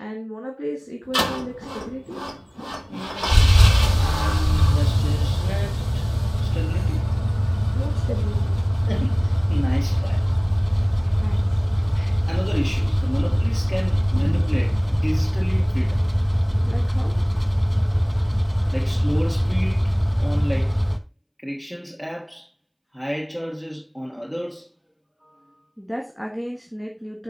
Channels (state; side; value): identical; both; correlation 1.00